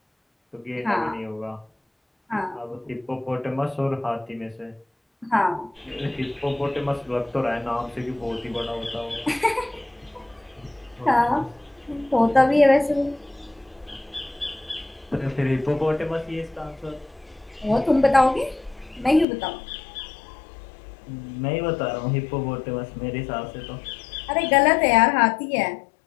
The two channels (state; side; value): drops out; right; at 19.2 s